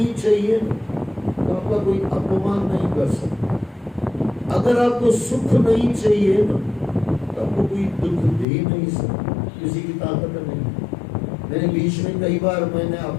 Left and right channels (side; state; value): right; drops out; at 8.5 s